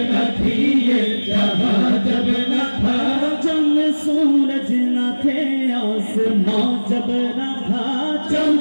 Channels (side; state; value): both; inverted; correlation -1.00